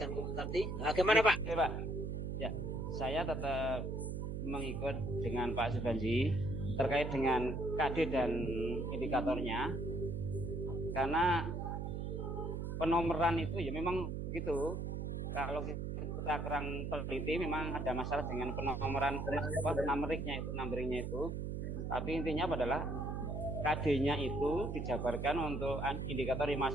tadi, gimana Pak? Oke, Pak. Ya, saya tetap mengikut dengan Pak Subanji terkait dengan KD dan indikatornya, karena penomoran itu ya memang begitu. Kalau kita kurang teliti memang ada masalah dengan penomoran numeringnya itu. Tapi intinya adalah KD-nya itu dijabarkan untuk indikator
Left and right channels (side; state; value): right; noise; hum, 3 dB below the sound